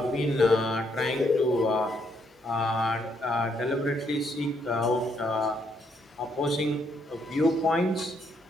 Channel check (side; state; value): both; normal; correlation 0.73